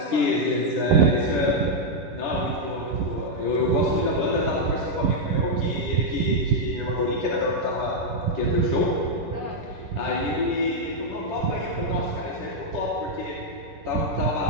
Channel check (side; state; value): left; late; 11 ms